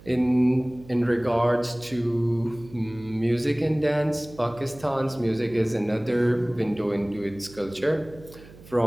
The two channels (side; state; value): right; noise; hum, 20 dB below the sound